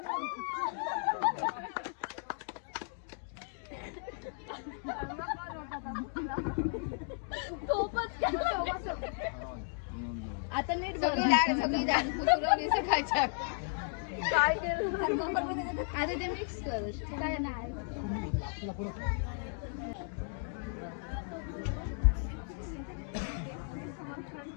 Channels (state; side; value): silent; right; 55 dB below the other